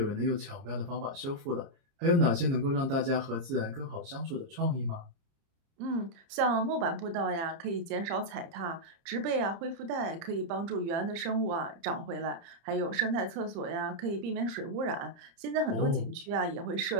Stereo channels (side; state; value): left; late; 30 ms